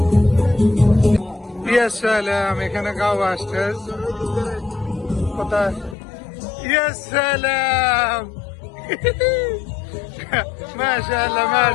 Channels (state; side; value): drops out; right; at 6.0 s